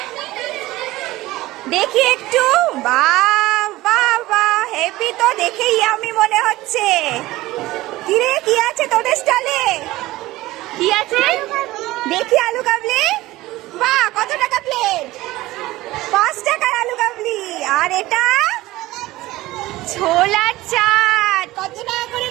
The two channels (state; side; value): quieter; left; 17.9 dB